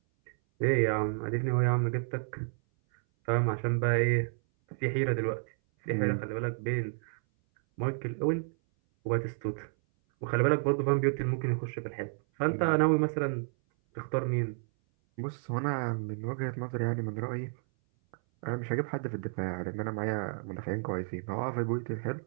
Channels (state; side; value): silent; left; 57 dB below the other